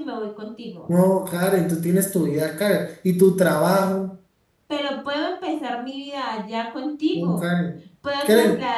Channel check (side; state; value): both; identical; correlation 1.00